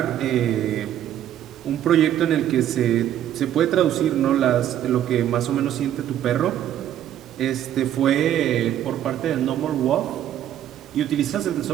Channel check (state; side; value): quieter; left; 11.2 dB